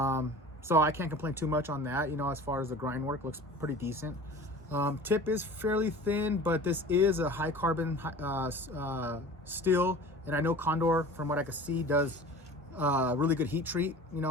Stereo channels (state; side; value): normal; both; correlation 0.40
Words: So I can't complain too much on that. You know, as far as the grind work, looks pretty decent. Tip is fairly thin, but this is a high carbon steel, and I know Condor, from what I can see, does really good heat treat. You